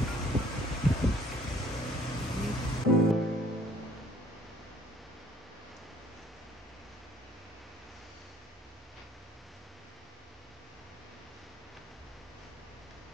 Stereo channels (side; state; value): both; normal; correlation 0.59